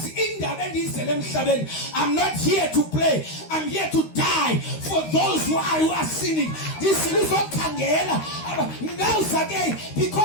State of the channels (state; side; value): late; right; 13 ms